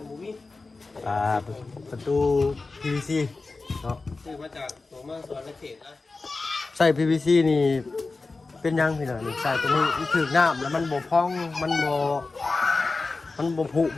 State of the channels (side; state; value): right; quieter; 3.7 dB